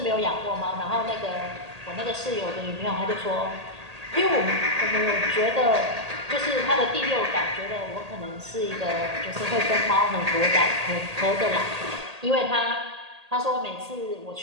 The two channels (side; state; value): left; late; 1.8 ms